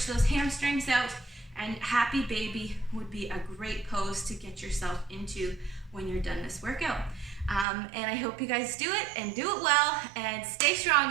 those hamstrings out, and happy baby would be a great pose to get yourself into when you're done this workout. And I hope you guys do it and do it well, and stay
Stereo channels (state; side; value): drops out; left; at 7.7 s